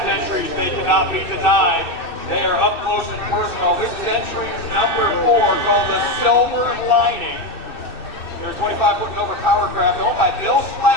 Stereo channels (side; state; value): right; late; 2.6 ms